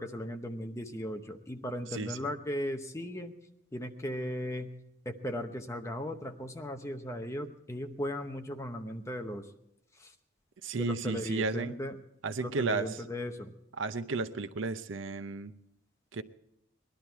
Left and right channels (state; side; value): normal; both; correlation 0.45